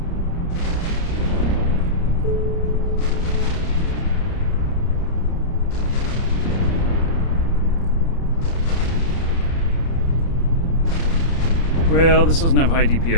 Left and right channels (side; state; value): right; late; 30 ms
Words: Well, this doesn't have high